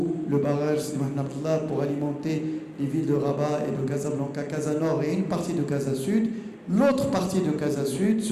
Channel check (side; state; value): both; identical; correlation 1.00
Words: le barrage Sidi Mohamed Abdallah pour alimenter les villes de Rabat et de Casablanca, Casa Nord et une partie de Casa Sud, l'autre partie de Casa Sud